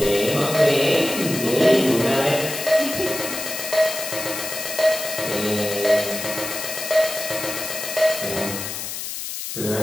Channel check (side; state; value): left; noise; hiss, 6 dB below the sound